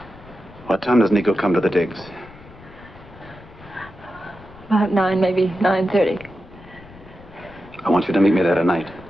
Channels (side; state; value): left; noise; rumble, 21 dB below the sound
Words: What time does Nico come to the digs? About 9, maybe 9:30. I want you to meet me there tonight.